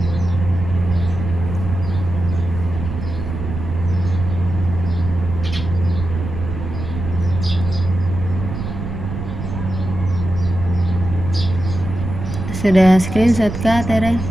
Sudah screenshot kah, Tere?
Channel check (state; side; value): noise; right; rumble, 6 dB below the sound